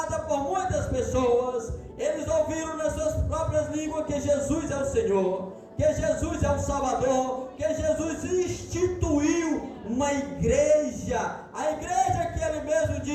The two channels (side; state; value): both; identical; correlation 1.00